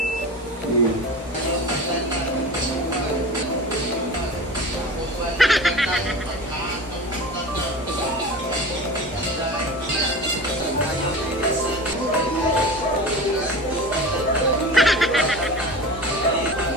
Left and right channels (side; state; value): both; normal; correlation 0.32